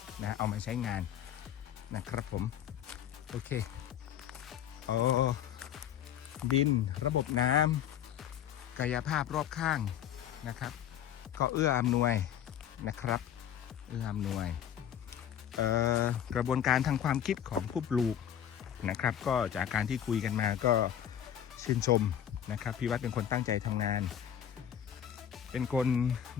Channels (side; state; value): right; quieter; 9.8 dB